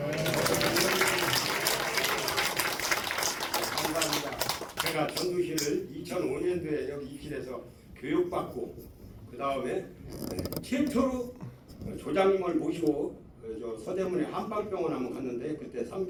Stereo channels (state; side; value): identical; both; correlation 1.00